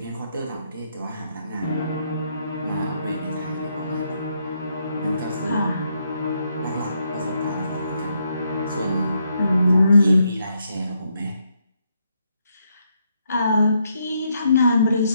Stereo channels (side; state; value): both; inverted; correlation -0.77